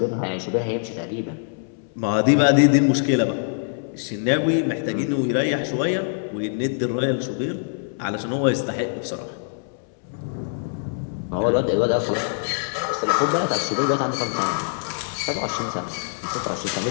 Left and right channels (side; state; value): right; silent; 63 dB below the other